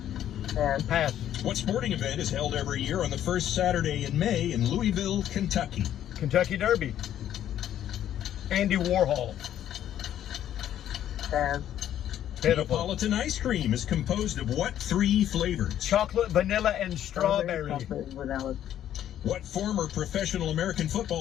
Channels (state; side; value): quieter; right; 11.1 dB